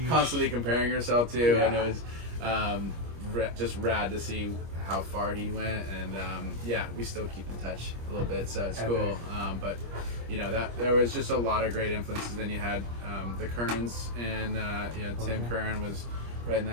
constantly comparing yourself to, and it was just rad to see how far he went, and we still keep in touch a little bit, so it's cool. But that there was just a lot of great influences. Then you had the Kerns, and Tim Kern was right in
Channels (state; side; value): late; left; 25 ms